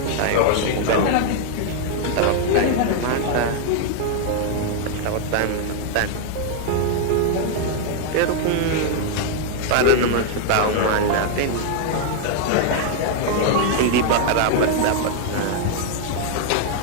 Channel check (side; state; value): both; different; correlation 0.00